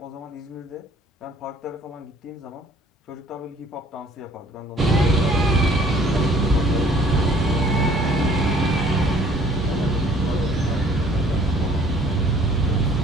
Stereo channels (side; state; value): both; normal; correlation 0.56